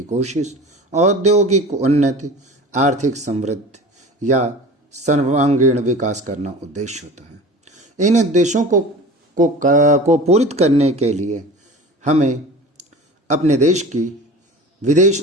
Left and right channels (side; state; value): both; normal; correlation 0.37